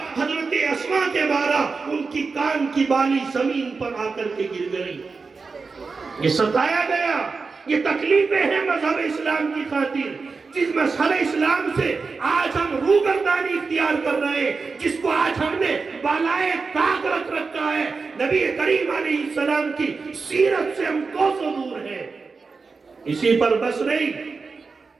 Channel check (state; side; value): quieter; left; 4.5 dB